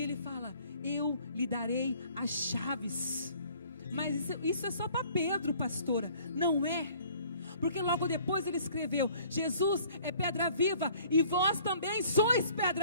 ele fala: eu lhe darei as chaves. Mas isso é só para Pedro, pastora. Não é. Porque logo depois ele escreveu: Jesus é pedra viva e vós também sois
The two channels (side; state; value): both; inverted; correlation -0.55